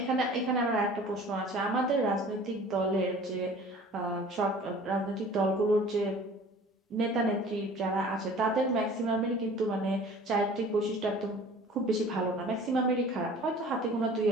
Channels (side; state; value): both; normal; correlation 0.46